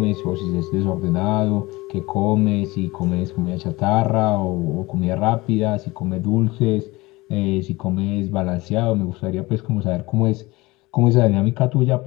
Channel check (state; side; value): quieter; right; 21.5 dB